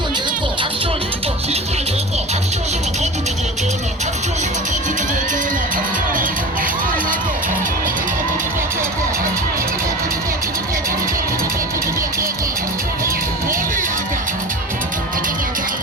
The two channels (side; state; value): both; normal; correlation 0.33